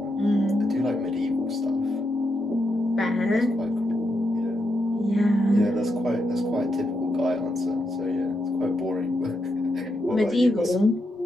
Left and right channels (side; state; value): both; normal; correlation 0.83